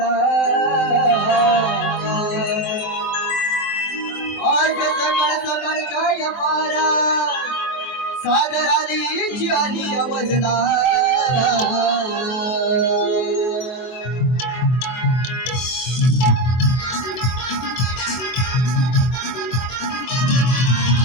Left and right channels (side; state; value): right; late; 23 ms